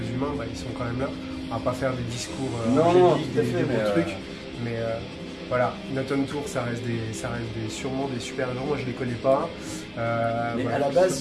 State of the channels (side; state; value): both; identical; correlation 1.00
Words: humains, ils sont quand même là, on va pas faire des discours angéliques, des beaux trucs, mais voilà, Not On Tour, ça reste sûrement des super gens, moi je les connais pas. Mais voilà. à la base,